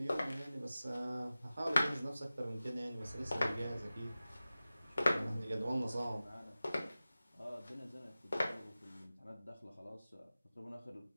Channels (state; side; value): inverted; both; correlation -0.96